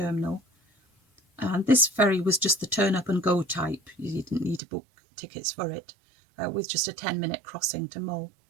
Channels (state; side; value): drops out; left; at 4.6 s